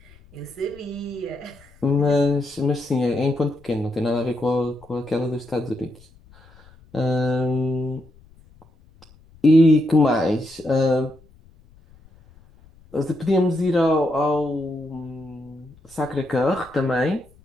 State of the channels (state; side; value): noise; left; rumble, 27 dB below the sound